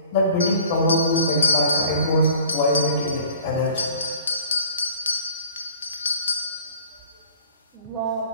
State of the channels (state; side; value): inverted; both; correlation -0.51